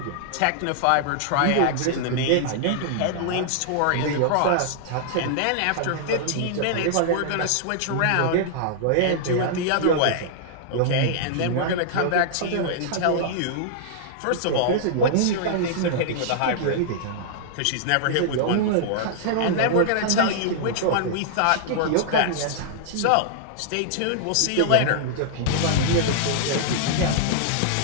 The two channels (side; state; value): both; different; correlation -0.01